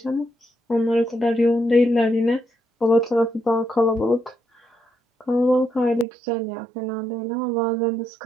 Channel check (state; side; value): drops out; left; at 6.1 s